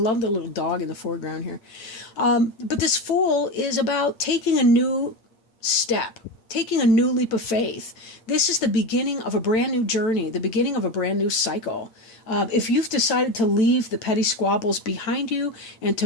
the little dog in the foreground here. But this Fool is about taking a new step, taking a new leap of faith. This is the beginning of a brand new journey, the beginning of a brand new cycle. If you've decided to leave the petty squabbles behind you and to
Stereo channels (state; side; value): late; right; 9.0 ms